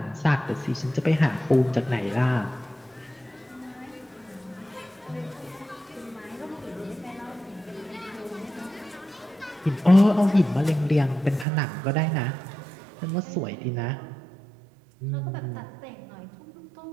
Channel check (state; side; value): drops out; left; at 11.5 s